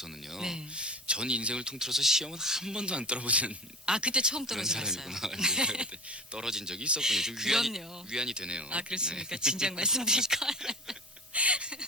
네. 전 인생을 통틀어서 시험은 한 번도 안 떨어보는 그때 처음 그런 떨어져봤어요. 사람이구나. 그때 떨어진 적이 있었군요. 좀 위안이, 그럼요. 위안이 되네요. 그렇습니까? 진작 말씀드릴 걸.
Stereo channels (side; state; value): both; normal; correlation 0.33